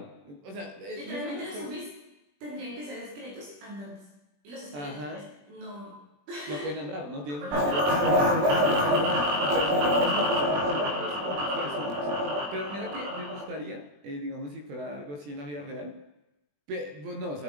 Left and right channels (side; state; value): left; late; 21 ms